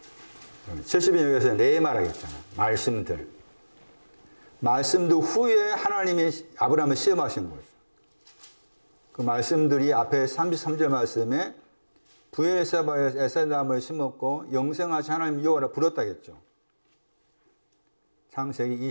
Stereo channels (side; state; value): both; inverted; correlation -1.00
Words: 70년 여기서 말하겠잖아. 말씀들. 말씀들 후에 하나님이 아브라함을 시험하신 거죠. 그 말씀들이 앞에 33절 말씀에 부엘세바에서 에셀나무를 심었고 영생하신 하나님 여호와를 부렀다겠죠. 창세기